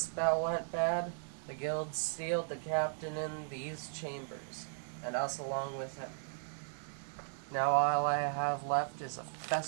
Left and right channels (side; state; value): left; silent; digital silence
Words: went bad, the guild sealed the captain in these chambers, and us along with him. Now all I have left is a